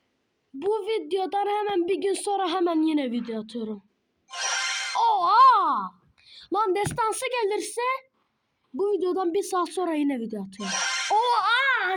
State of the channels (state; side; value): identical; both; correlation 1.00